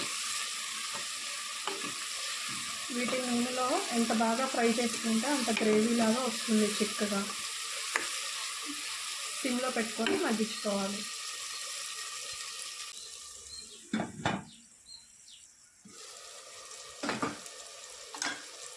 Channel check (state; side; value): identical; both; correlation 1.00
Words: వీటి నూనెలో ఎంత బాగా ఫ్రై చేసుకుంటే అంత గ్రేవీ లాగా వస్తుంది చిక్కగా. సిమ్లో పెట్టుకొని మగ్గించుకోవాలి.